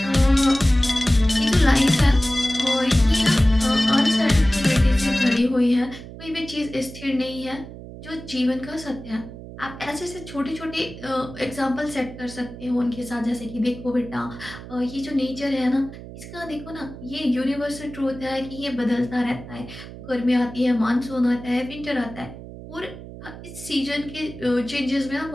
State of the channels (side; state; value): right; noise; hum, 14 dB below the sound